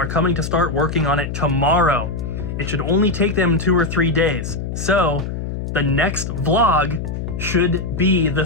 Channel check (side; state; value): left; noise; hum, 5 dB below the sound